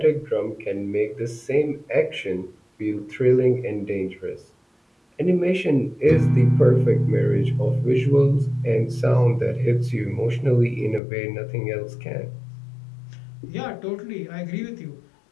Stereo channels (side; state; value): right; drops out; at 11.0 s